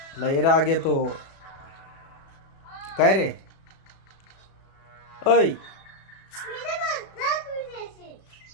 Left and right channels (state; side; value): late; right; 36 ms